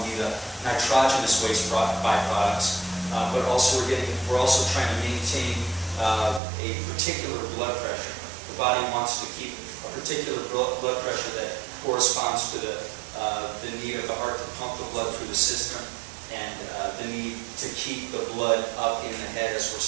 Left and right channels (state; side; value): drops out; left; at 6.4 s